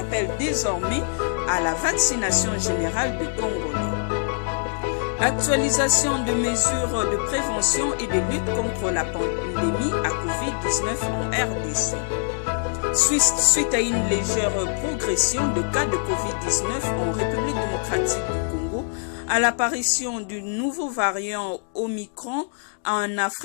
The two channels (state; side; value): silent; right; digital silence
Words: désormais à la vaccination générale des Congolais. Actualisation de mesures de prévention et de lutte contre la pandémie à Covid-19 en RDC. Suite à une légère progression de cas de Covid-19 en République démocratique du Congo, à l'apparition du nouveau variant Omicron en